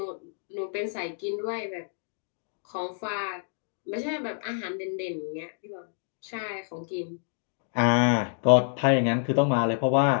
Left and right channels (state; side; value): silent; right; digital silence